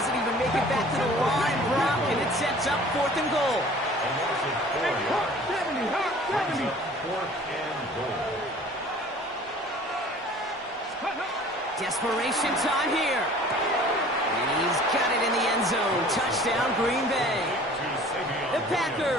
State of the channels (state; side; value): normal; both; correlation 0.48